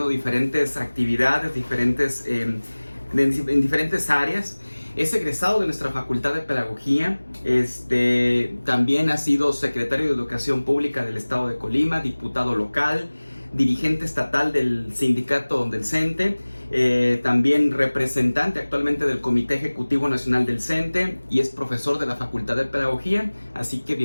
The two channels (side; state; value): both; inverted; correlation -1.00